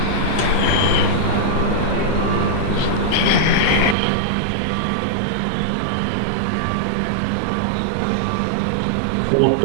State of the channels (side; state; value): left; drops out; at 4.0 s